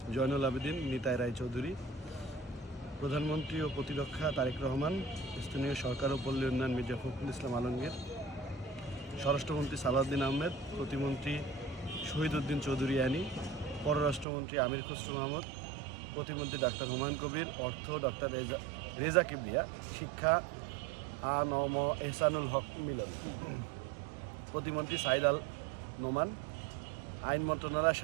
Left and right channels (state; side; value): drops out; left; at 14.2 s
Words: Zainul Abedin Nitai Roychowdhury, প্রধানমন্ত্রী ও প্রতিরক্ষা তারেক রহমান, স্থানীয় সরকার ও পল্লী উন্নয়ন মির্জা ফখরুল ইসলাম আলমগীর, স্বরাষ্ট্রমন্ত্রী সালাউদ্দিন আহমেদ, প্রতিমন্ত্রী শহীদ উদ্দিন চৌধুরী আনি, পররাষ্ট্রমন্ত্রী আমির খসরু মাহমুদ, প্রতিমন্ত্রী ডাক্তার হুমায়ুন কবির, অর্থ ডক্টর রেজা কিবরিয়া, শিক্ষা আ.ন.ম এহসানুল হক মিলন, প্রতিমন্ত্রী সাইদ আল নোমান, আইন মন্ত্রণালয়